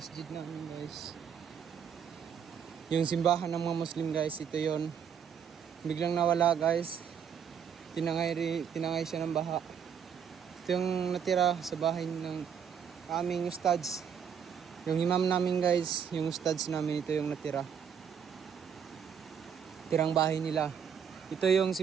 namin guys. Yung simbahan ng mga Muslim guys. Ito yun. Biglang nawala guys. Tinangay siya ng baha. Ito yung natira sa bahay ng aming ustads. Yung imam namin guys. Yung ustads namin. Ito yung natira. Tirang bahay nila. Ito yung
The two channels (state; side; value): quieter; left; 7.6 dB